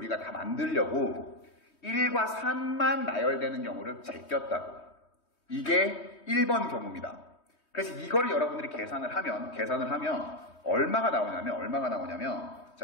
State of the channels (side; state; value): right; late; 3.2 ms